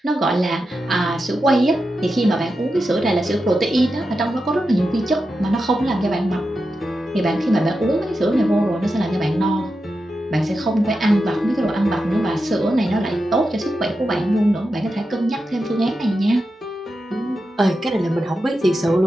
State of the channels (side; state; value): both; normal; correlation 0.89